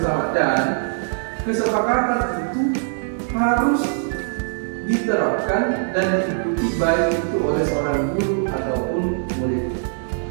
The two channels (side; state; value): left; silent; 60 dB below the other